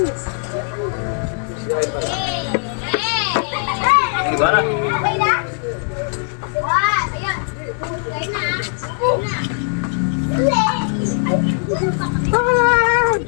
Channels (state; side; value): silent; right; 55 dB below the other